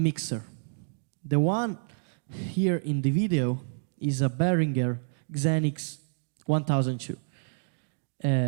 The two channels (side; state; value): left; silent; digital silence